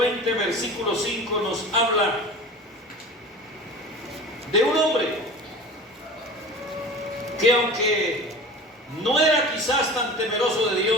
versículo 5 nos habla de un hombre que, aunque no era quizás tan temeroso de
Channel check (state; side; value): normal; both; correlation 0.37